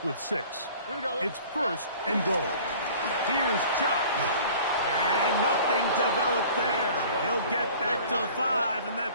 with 6? Here we go. It's 1st and goal. Here's Chubb. And nothing developed there. He'll get back to the 5, and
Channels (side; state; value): both; inverted; correlation -0.47